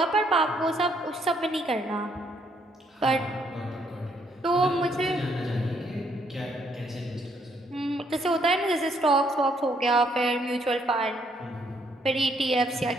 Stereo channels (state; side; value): normal; both; correlation 0.70